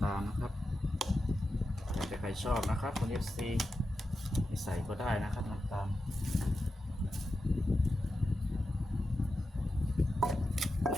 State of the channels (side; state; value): both; normal; correlation 0.90